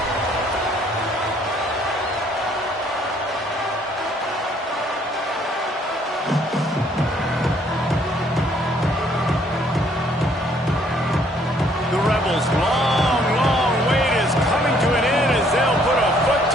Long wait is coming to an end as they'll put a foot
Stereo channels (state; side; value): normal; both; correlation 0.64